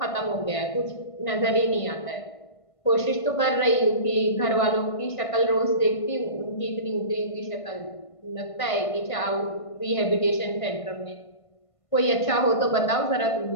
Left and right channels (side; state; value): right; late; 1.5 ms